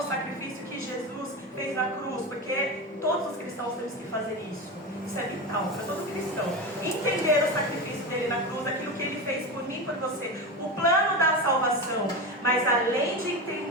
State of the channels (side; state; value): both; normal; correlation 0.21